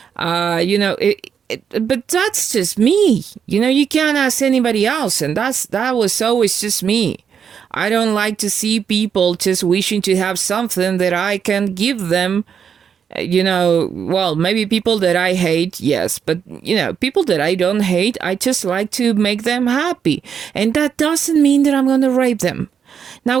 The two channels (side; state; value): left; quieter; 7.4 dB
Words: But that's just me. You can't ask anybody else, and that was always just me. I don't like to see people just wishing to have something that I can give them. Well, maybe people that I hate, yes, but, people that I don't hate, I just like to make them happy. And that doesn't mean that I'm going to rape them. Now,